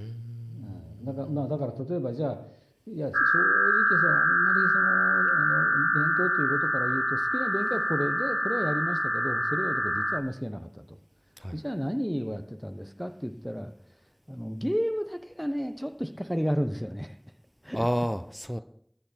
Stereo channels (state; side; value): identical; both; correlation 1.00